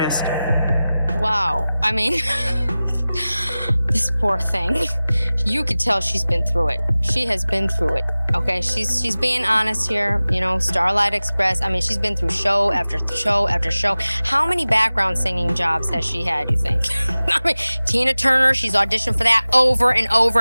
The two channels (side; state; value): both; inverted; correlation -0.97